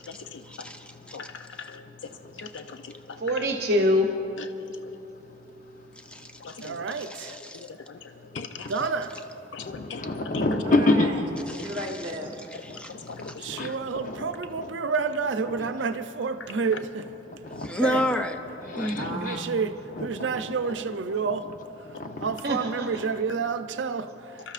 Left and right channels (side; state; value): both; normal; correlation 0.32